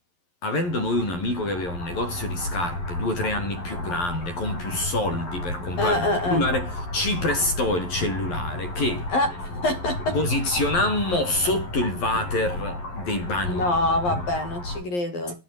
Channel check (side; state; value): right; late; 11 ms